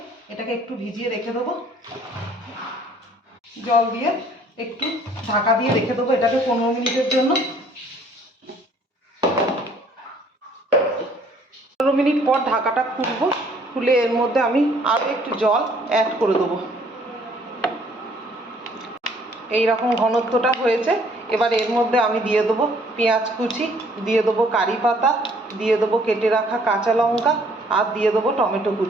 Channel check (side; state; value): both; normal; correlation 0.60